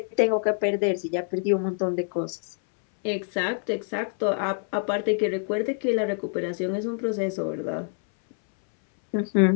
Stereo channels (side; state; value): right; silent; 61 dB below the other